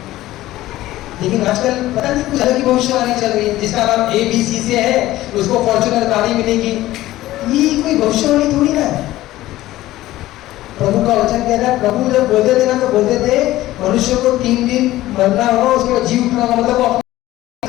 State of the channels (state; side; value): quieter; right; 15.9 dB